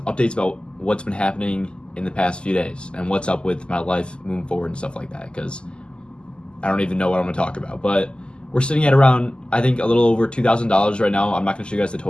updates about what's been happening in the past few days and what's up with my life moving forward and stuff like that, because I don't even know what I'm going to talk about. But we're sitting at around, I think, a little over $2,000 right now. I'm not going to show you guys the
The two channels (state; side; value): late; right; 0.049 ms